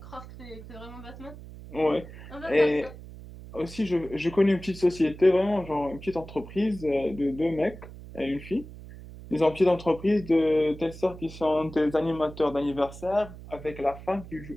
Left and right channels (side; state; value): right; noise; hum, 15 dB below the sound